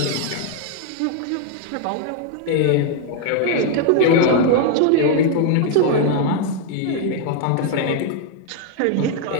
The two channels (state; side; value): different; both; correlation 0.00